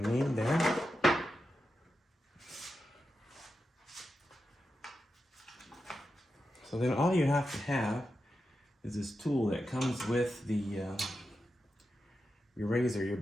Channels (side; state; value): both; normal; correlation 0.89